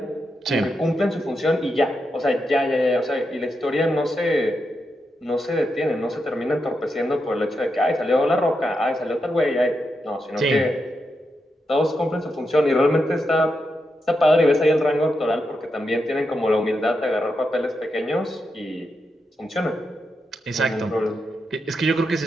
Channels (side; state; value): both; normal; correlation 0.85